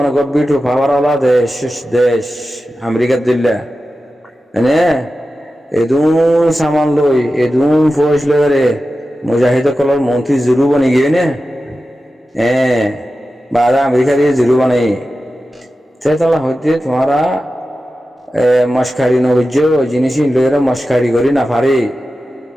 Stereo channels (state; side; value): normal; both; correlation 0.93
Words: গব্বিটু পাওয়ারওয়ালা দেশ আমেরিকার দিল্লা এনে এদুন সামান লই এদুন ফৌজ লয়ারে মুজাহিদ কলর মন্ত্রী জুরু বনে গিয়ে নে বাদা আমেরিকা দিয়ে জুরু বানাই তেতলা হইতে তোমারা মস্কারি নবজ্য জিনিস লয়ের মস্কারি করি না পারে